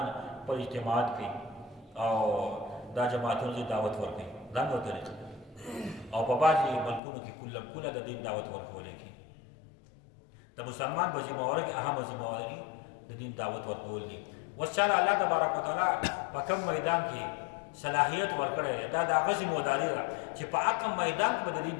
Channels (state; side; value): drops out; right; at 7.0 s